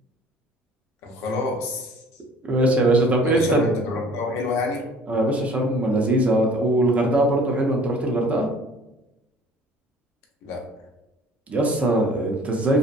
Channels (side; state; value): both; normal; correlation 0.51